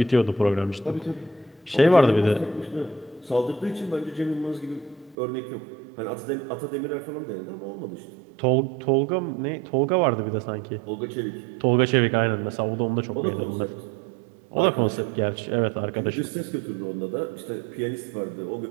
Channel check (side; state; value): left; drops out; at 5.2 s